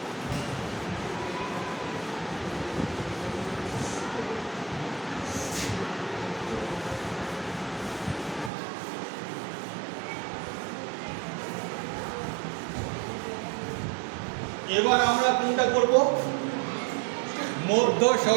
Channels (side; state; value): left; drops out; at 8.5 s